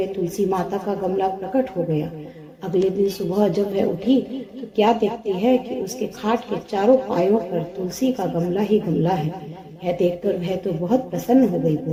तुलसी माता का गमला प्रकट हो गया। अगले दिन सुबह जब वह उठी तो क्या देखती है कि उसके खाट के चारों पायों पर तुलसी का गमला ही गमला है। यह देखकर वह तो बहुत प्रसन्न हो गई।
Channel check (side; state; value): both; identical; correlation 1.00